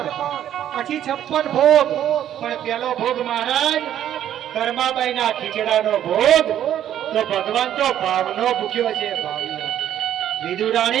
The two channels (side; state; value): left; quieter; 10.9 dB